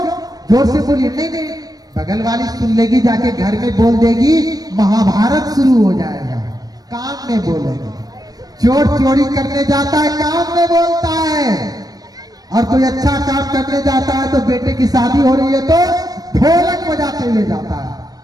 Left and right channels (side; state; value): left; late; 0.19 ms